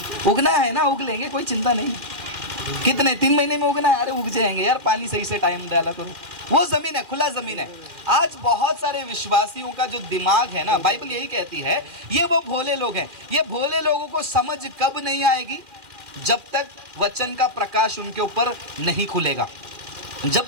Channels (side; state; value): left; late; 2.4 ms